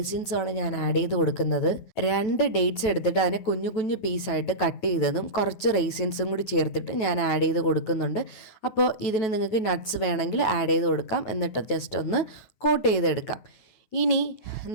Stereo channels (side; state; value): right; late; 9.2 ms